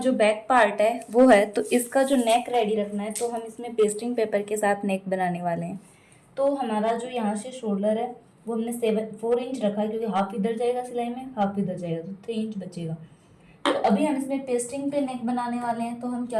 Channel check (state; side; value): identical; both; correlation 1.00